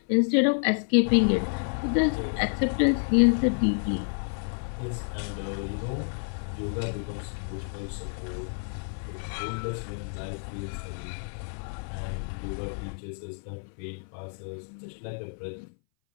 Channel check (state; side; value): silent; right; 59 dB below the other